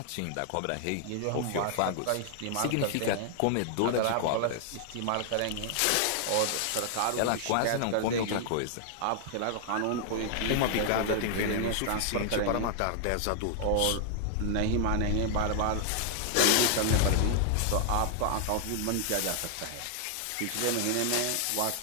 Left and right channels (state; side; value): different; both; correlation 0.00